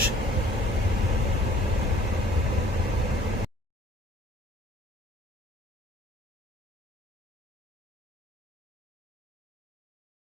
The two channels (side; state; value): both; normal; correlation 0.55